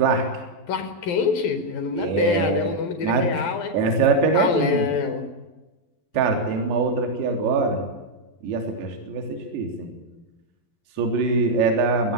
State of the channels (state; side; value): late; right; 11 ms